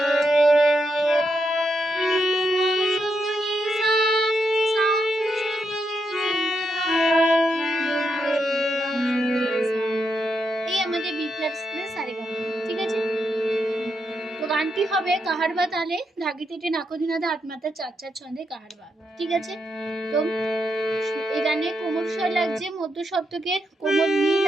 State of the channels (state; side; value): normal; both; correlation 0.82